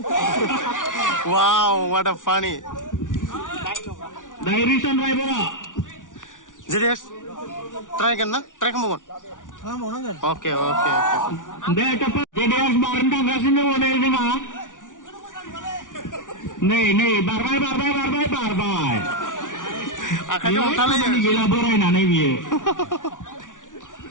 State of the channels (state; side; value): late; right; 0.87 ms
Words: wow what a funny दायो रिसन रायबरआ जेडेक्स ट्राइ खालामबावगोन ओके दे जेडेक्स बारनो थांगासिनो दङ नै जोंहा नै बारबाय आखाइजों हमथालायो गैला बोरायनानै बियो